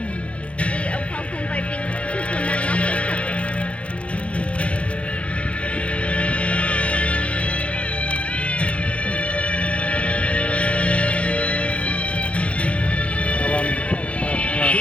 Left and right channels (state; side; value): late; right; 0.062 ms